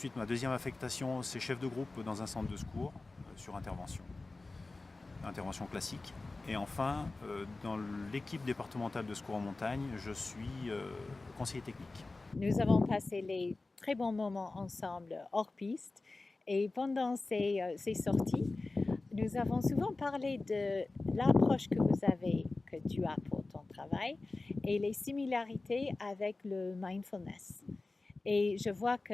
ma deuxième affectation, c'est chef de groupe dans un centre de secours sur intervention classique. Et enfin, dans l'équipe départementale de secours en montagne, je suis conseiller technique. Nous avons passé les très bons moments ensemble hors piste et pendant ces sorties, nous avons souvent parlé de l'approche que tu as pour ton travail et les similarités avec le mindfulness. Et je vois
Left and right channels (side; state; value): right; quieter; 3.3 dB